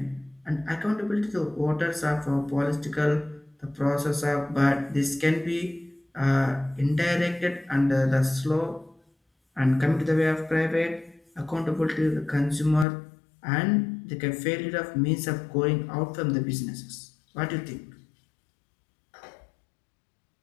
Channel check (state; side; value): drops out; right; at 12.9 s